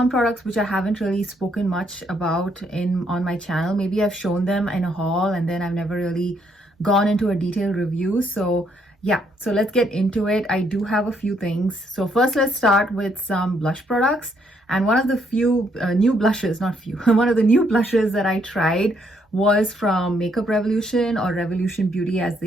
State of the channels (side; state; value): both; normal; correlation 0.72